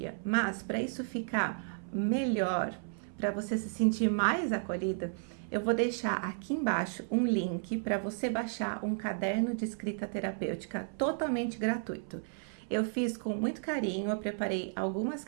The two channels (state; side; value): silent; left; 56 dB below the other